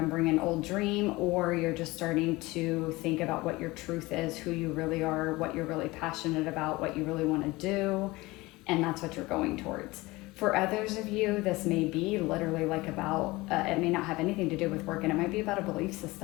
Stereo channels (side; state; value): right; quieter; 21.3 dB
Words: an old dream, or you're just starting to think about what your truth is, who you really are, what you're really passionate about, what you really want to do. And that's what you're going towards. For others of you, this may be literally like about, it may not have anything to do with work, and it might be about a belief